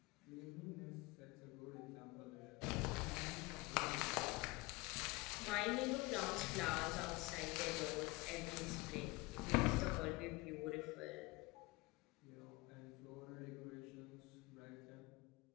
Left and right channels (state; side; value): quieter; right; 23.3 dB